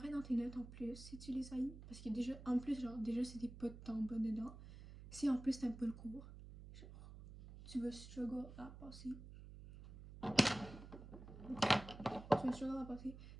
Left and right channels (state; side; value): noise; right; hum, 14 dB below the sound